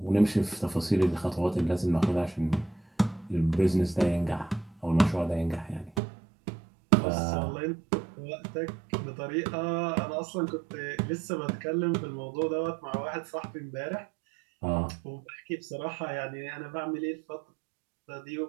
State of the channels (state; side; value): drops out; left; at 6.0 s